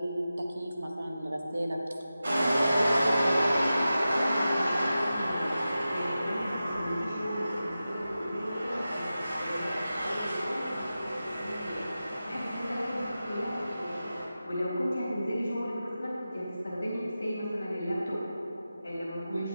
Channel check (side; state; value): both; inverted; correlation -0.93